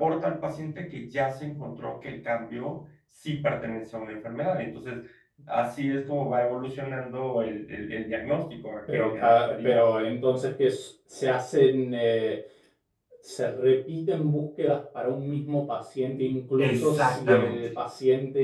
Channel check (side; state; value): both; identical; correlation 1.00